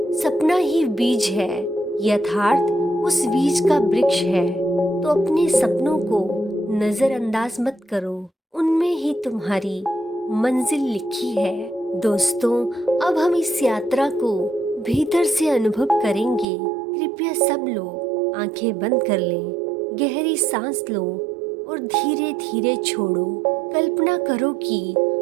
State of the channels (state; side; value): drops out; left; at 16.4 s